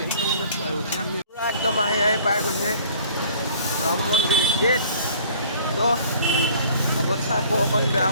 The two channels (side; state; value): both; inverted; correlation -0.51